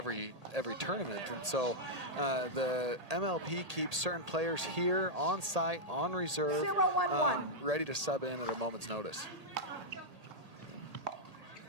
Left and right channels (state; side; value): late; left; 1.8 ms